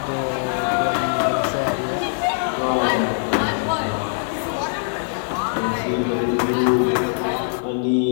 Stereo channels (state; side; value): silent; right; 58 dB below the other